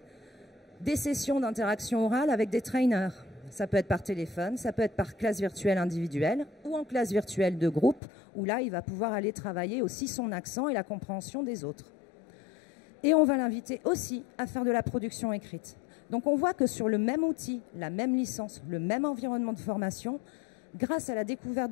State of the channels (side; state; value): right; drops out; at 8.0 s